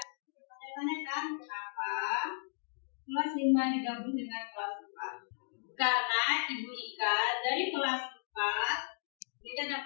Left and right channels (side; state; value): right; silent; digital silence